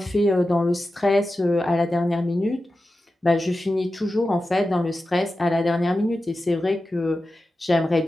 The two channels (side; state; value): both; normal; correlation 0.93